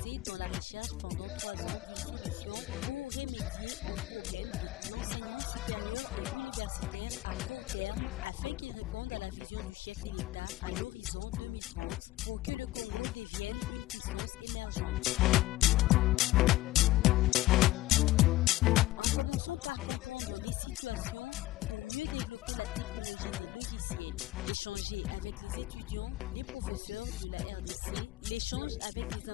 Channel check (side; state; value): right; quieter; 16.6 dB